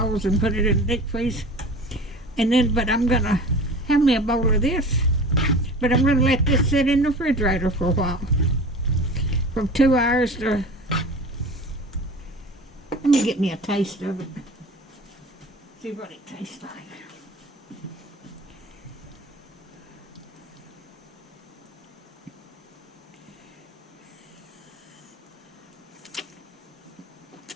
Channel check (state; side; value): normal; both; correlation 0.37